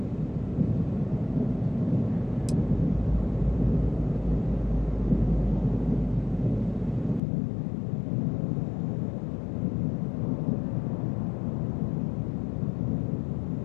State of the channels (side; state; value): right; drops out; at 7.2 s